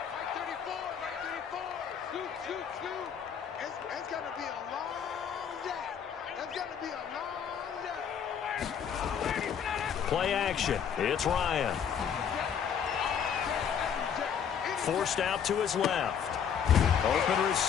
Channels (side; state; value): right; quieter; 7.8 dB